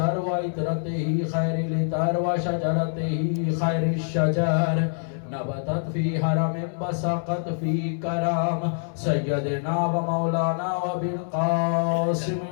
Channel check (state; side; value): silent; right; digital silence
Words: وإطرته خير الإطر وشجرته خير الشجر نبتت في حرم بسقت في كرم سيدنا ومولانا وبالقاسم